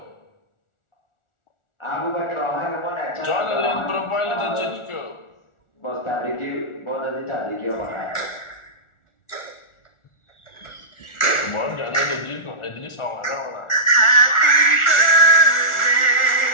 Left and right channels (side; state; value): right; late; 1.4 ms